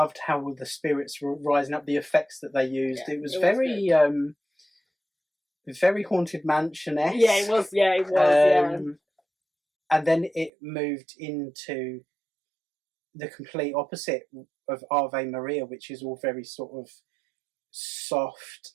how the spirits were rising up, the effects that they used. Yeah, it was very Haunted Mansion-esque. Yeah, it was. Yeah, it was. And then it moved into the complete opposite of Ave Maria, which is all very sort of soft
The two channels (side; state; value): left; drops out; at 10.5 s